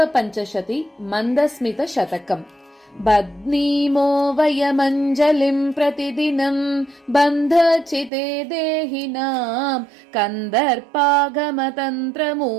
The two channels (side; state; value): left; drops out; at 8.1 s